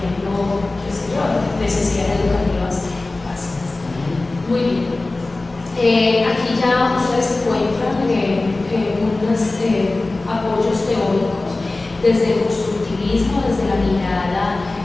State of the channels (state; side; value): quieter; right; 3.1 dB